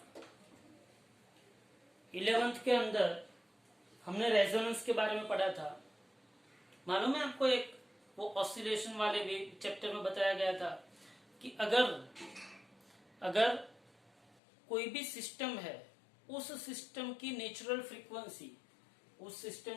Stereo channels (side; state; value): right; drops out; at 14.4 s